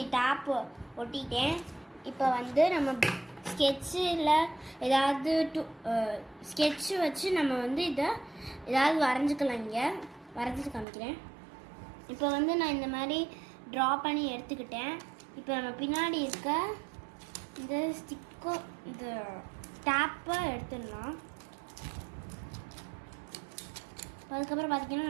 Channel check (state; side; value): drops out; left; at 10.9 s